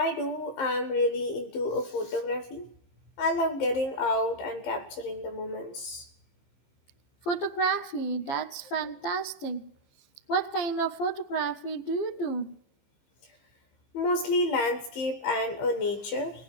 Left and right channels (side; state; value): right; late; 15 ms